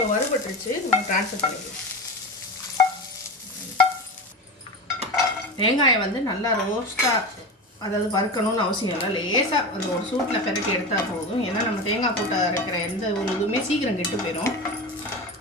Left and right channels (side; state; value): both; normal; correlation 0.24